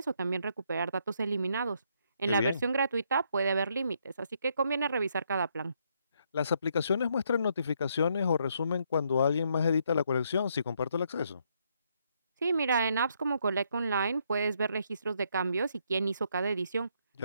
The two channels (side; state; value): both; inverted; correlation -0.73